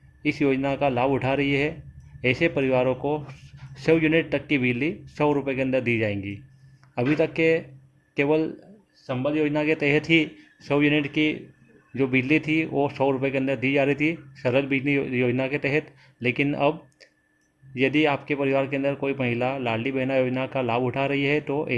इस योजना का लाभ उठा रही है, ऐसे परिवारों को 100 यूनिट तक की बिजली 100 रुपये के अंदर दी जाएंगी। अभी तक के केवल संबल योजना के तहत ही 100 यूनिट की जो बिजली थी वो 100 रुपये के अंदर दी जा रही थी सरल बिजली योजना के तहत। लेकिन अब यदि आपके परिवार के अंदर कोई महिला लाडली बहना योजना का लाभ उठा रही है तो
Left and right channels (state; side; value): identical; both; correlation 1.00